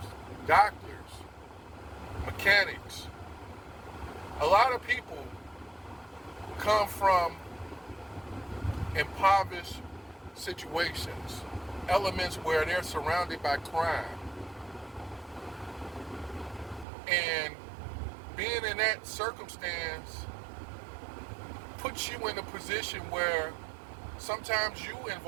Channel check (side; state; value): left; drops out; at 16.9 s